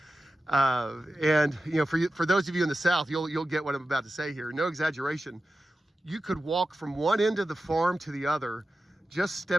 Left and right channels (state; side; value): normal; both; correlation 0.93